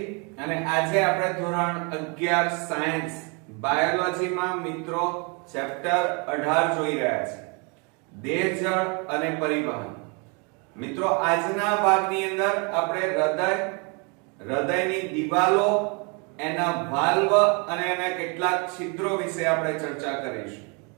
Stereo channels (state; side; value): quieter; left; 33.1 dB